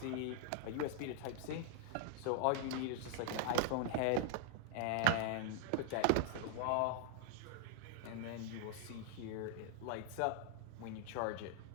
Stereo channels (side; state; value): both; different; correlation 0.00